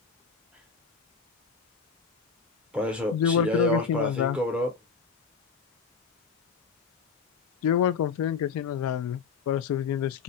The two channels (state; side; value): quieter; right; 5.6 dB